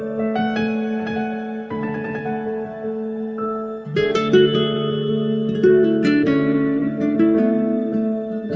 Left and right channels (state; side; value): identical; both; correlation 1.00